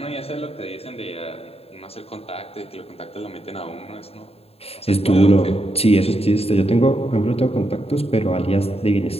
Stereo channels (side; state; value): right; late; 0.29 ms